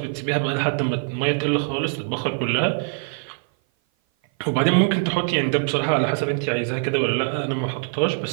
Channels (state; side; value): silent; left; 57 dB below the other